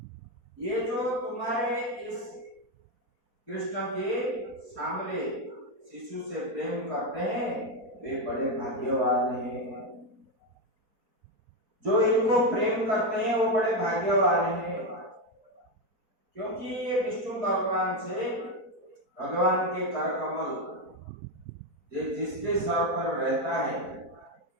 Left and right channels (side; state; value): left; late; 4.2 ms